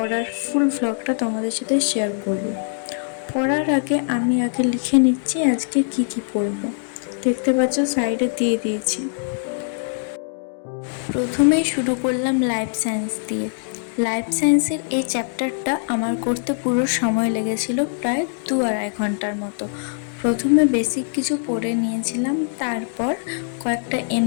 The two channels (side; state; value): right; silent; digital silence